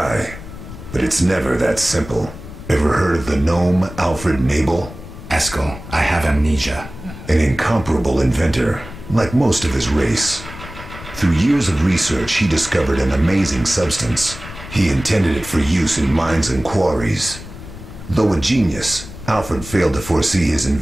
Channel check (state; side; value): noise; left; rumble, 14 dB below the sound